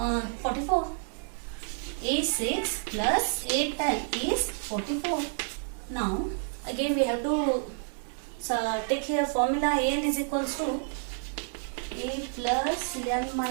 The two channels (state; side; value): silent; left; 58 dB below the other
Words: 44. A6 plus A10 is 44. Now again we have to take here formula an is equals to a plus n